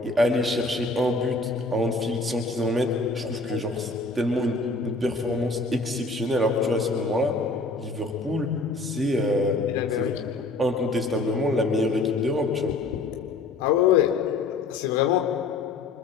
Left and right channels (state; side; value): quieter; right; 3.4 dB